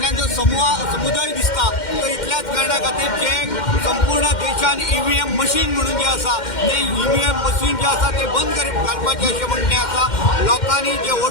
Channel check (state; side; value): late; right; 2.1 ms